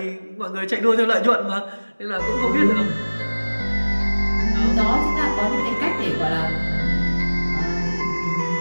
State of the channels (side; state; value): both; inverted; correlation -1.00